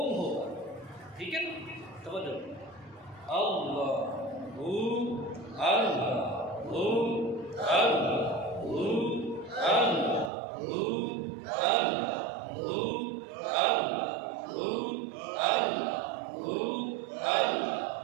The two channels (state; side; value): drops out; left; at 10.3 s